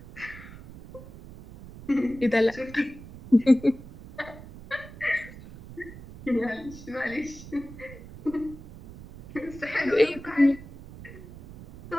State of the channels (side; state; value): right; noise; rumble, 16 dB below the sound